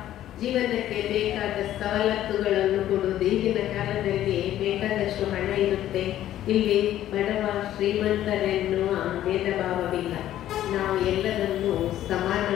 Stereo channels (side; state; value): right; quieter; 12.6 dB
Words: ಜೀವನಕ್ಕೆ ಬೇಕಾದ ಸವಲತ್ತುಗಳನ್ನು ಕೊಡುವುದು. ಈಗಿನ ಕಾಲದಲ್ಲಿ ಬೇಕಾದಷ್ಟು ಹಣ ಇರುತ್ತೆ, ಇಲ್ಲಿ ಬಡವ ಶ್ರೀಮಂತರೆನ್ನುವ ಭೇದ ಭಾವವಿಲ್ಲ. ನಾವು ಎಲ್ಲರನ್ನೂ